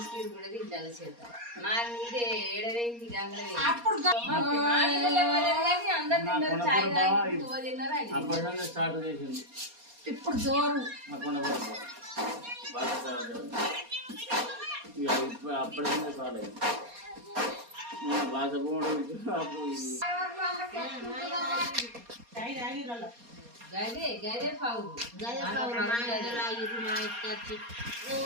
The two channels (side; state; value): left; late; 4.2 ms